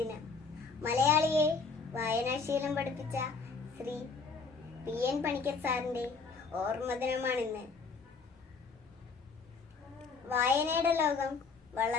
മലയാളിയെ വായനാശീലം പഠിപ്പിച്ച ശ്രീ PN പണിക്കർ സാറിൻ്റെ ഓർമ്മ ദിനമാണിന്ന്. വായനയുടെ ലോകം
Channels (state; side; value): quieter; right; 4.7 dB